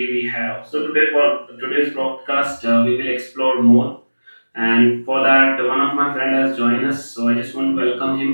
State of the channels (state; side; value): inverted; both; correlation -1.00